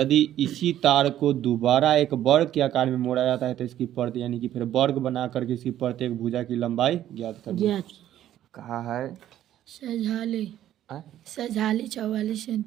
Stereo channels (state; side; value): quieter; left; 12.0 dB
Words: इसी तार को दोबारा एक वर्ग के आकार में मोड़ा जाता है तो इसकी प्रत्येक, यानी कि फिर वर्ग बना करके इसकी प्रत्येक भुजा की लंबाई ज्ञात करनी है। कहा है सजाले सजाली 44